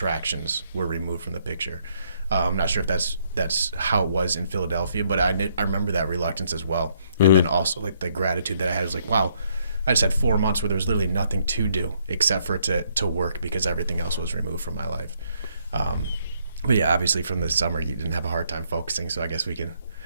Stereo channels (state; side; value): inverted; both; correlation -0.71